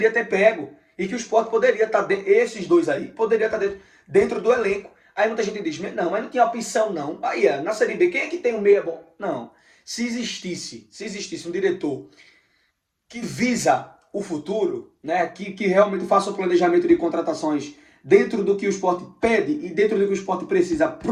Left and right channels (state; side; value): identical; both; correlation 1.00